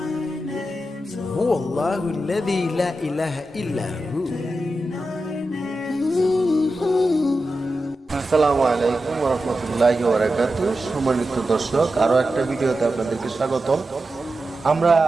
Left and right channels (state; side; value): normal; both; correlation 0.91